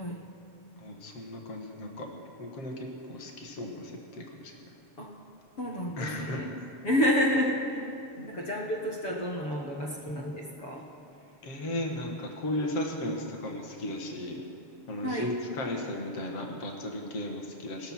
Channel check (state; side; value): late; right; 7.1 ms